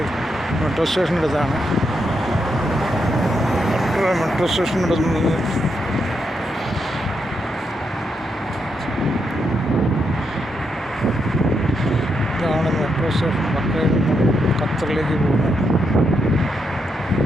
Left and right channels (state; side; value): normal; both; correlation 0.81